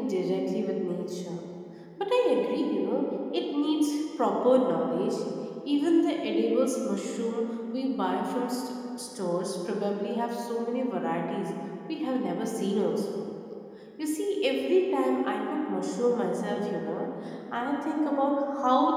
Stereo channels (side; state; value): both; identical; correlation 1.00